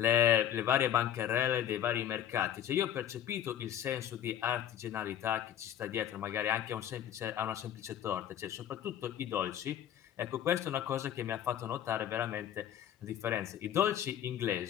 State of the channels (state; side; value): quieter; right; 10.4 dB